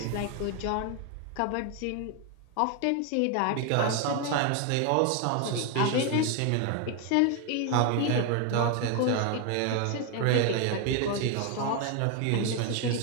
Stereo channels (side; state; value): both; different; correlation 0.01